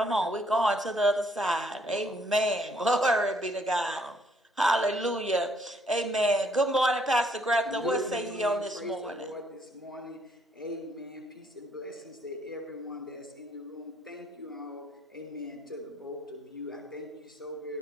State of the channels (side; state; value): both; normal; correlation 0.68